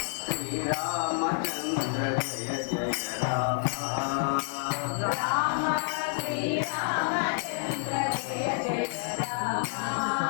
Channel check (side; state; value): right; silent; 59 dB below the other